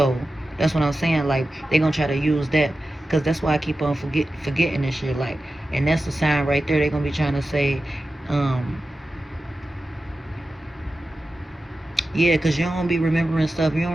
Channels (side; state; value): both; normal; correlation 0.93